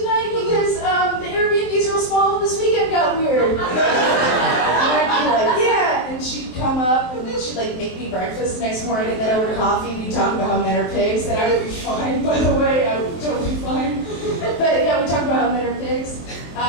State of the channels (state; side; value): late; right; 23 ms